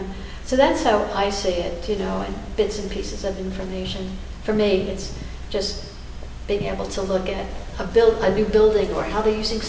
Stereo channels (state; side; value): identical; both; correlation 1.00